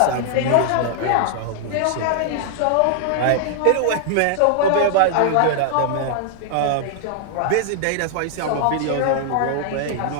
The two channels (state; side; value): different; both; correlation -0.01